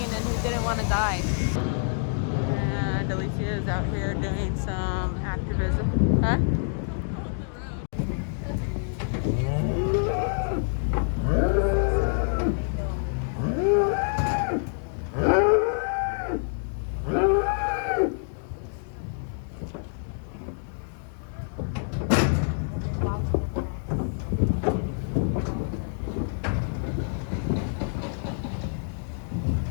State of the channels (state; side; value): silent; right; digital silence